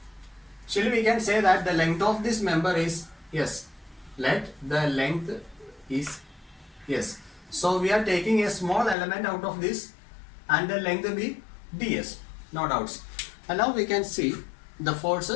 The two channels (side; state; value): right; drops out; at 9.0 s